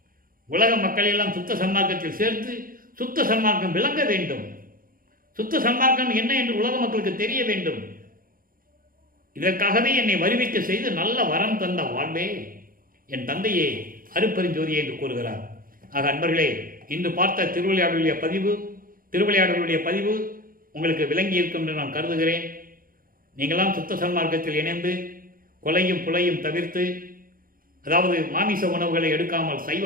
உலக மக்களை எல்லாம் சுத்த சன்மார்க்கத்தில் சேர்த்து சுத்த சன்மார்க்கம் விளங்க வேண்டும். சுத்த சன்மார்க்கம் என்ன என்று உலக மக்களுக்கு தெரிய வேண்டும். இதற்காகவே என்னை வருவிக்க செய்து நல்ல வரம் தந்த வாழ்வே என் தந்தையே அருப்பெருஞ்சோதியே என்று கூறுகிறார். ஆக அன்பர்களே, இன்று பார்த்த திருவிளையாடலுடைய பதிவு உங்களுக்கு விளங்கி இருக்கும் என்று நான் கருதுகிறேன். நீங்களாம் சுத்த சன்மார்க்கத்தில் இணைந்து கொலையும் புலையும் தவிர்த்து, அதாவது மாமிச உணவுகளை எடுக்காமல் சைவ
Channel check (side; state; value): left; late; 0.41 ms